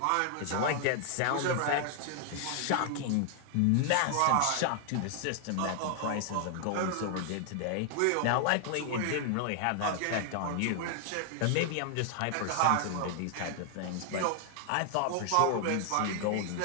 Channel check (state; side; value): different; both; correlation 0.00